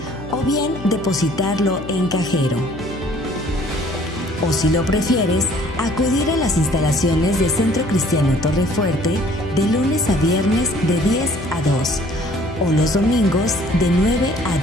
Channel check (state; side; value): noise; left; hum, 15 dB below the sound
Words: o bien depositarlo en cajero. O si lo prefieres, acudir a las instalaciones de Centro Cristiano Torrefuerte de lunes a viernes de 10 a 2 o los domingos de 9 a